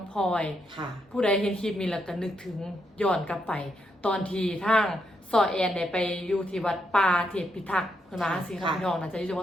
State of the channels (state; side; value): normal; both; correlation 0.79